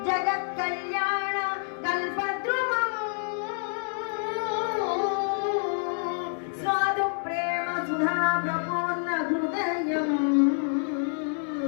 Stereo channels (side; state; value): right; silent; 60 dB below the other